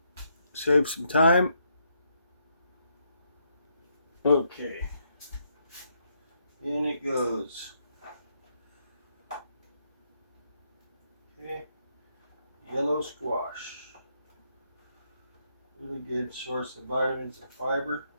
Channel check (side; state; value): both; inverted; correlation -0.76